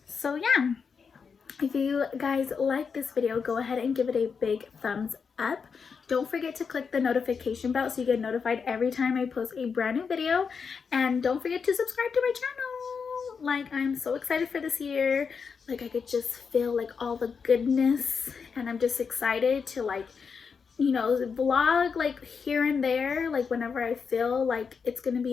So yeah, if you guys like this video, go ahead and give it a big thumbs up. Don't forget to click the notification bell so you get notified every time I post a brand new video. And don't forget to subscribe to my channel. Like, I'm so excited for this year. Like, I could just feel like all the goodness, and I'm just excited to like you know, vlog like here and there, like whenever I feel like it's gonna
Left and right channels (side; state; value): right; quieter; 5.8 dB